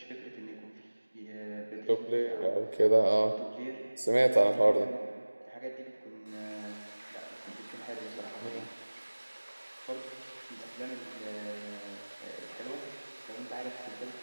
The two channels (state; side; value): inverted; both; correlation -1.00